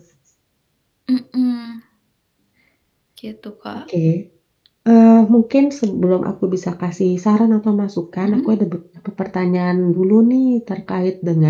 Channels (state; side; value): identical; both; correlation 1.00